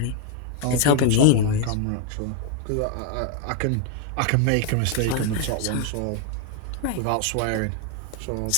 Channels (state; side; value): different; both; correlation 0.00